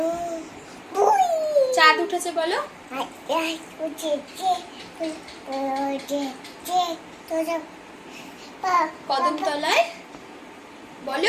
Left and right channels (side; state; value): both; identical; correlation 1.00